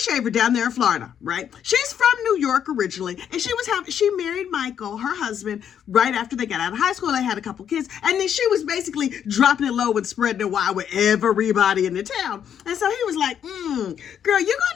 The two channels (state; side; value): quieter; right; 8.8 dB